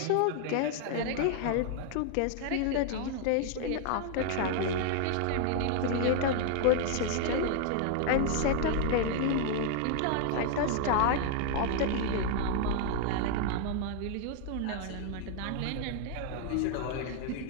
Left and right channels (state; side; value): different; both; correlation 0.00